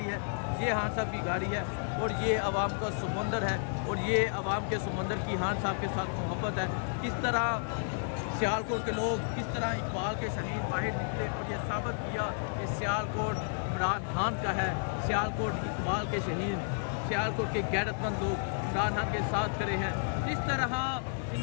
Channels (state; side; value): silent; right; digital silence